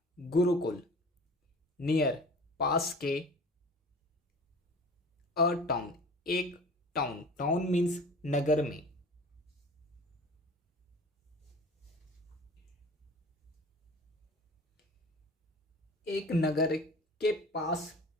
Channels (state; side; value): normal; both; correlation 0.42